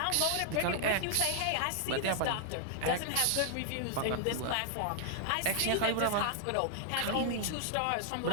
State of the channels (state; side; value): different; both; correlation -0.01